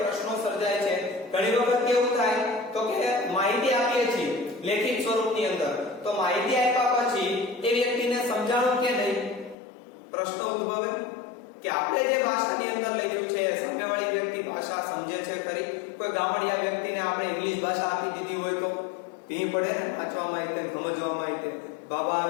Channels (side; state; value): right; drops out; at 9.6 s